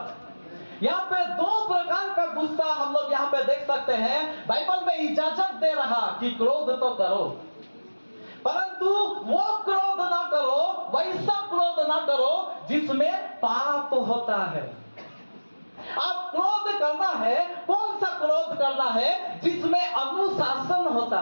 यहाँ पे दो प्रकार का गुस्सा हम लोग यहाँ पे देख सकते हैं। बाइबल में इजाजत दे रहा कि क्रोध तो करो परंतु वो क्रोध ना करो, वैसा क्रोध ना करो जिसमें पाप होता है। आप क्रोध करना है, कौन सा क्रोध करना है? जिसमें अनुशासन होता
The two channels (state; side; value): inverted; both; correlation -1.00